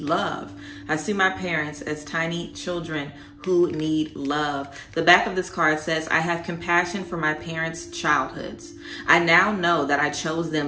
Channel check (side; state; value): both; identical; correlation 1.00